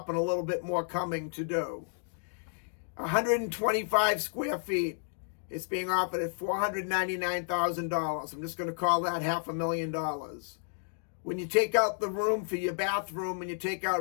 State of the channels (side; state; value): right; silent; digital silence